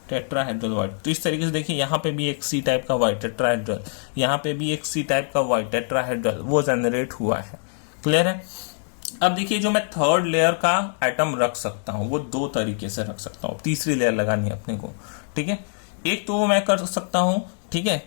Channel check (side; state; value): right; silent; 55 dB below the other